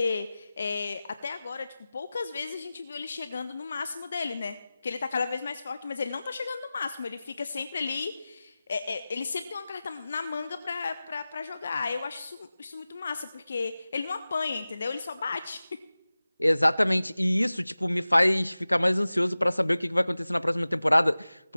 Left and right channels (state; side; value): inverted; both; correlation -0.97